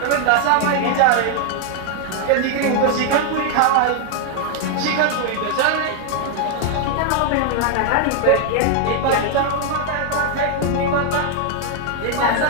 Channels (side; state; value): both; different; correlation 0.00